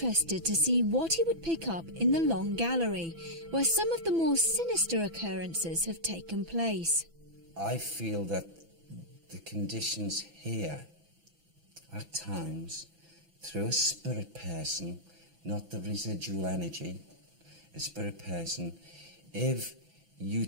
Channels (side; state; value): left; late; 6.0 ms